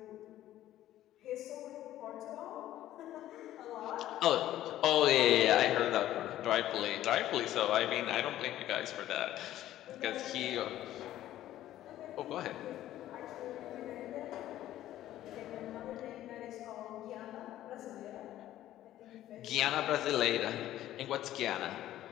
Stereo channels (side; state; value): right; quieter; 13.4 dB